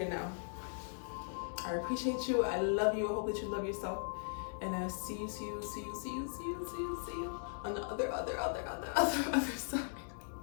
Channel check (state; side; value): silent; right; digital silence